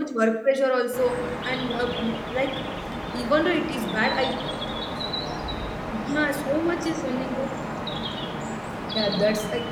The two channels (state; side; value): identical; both; correlation 1.00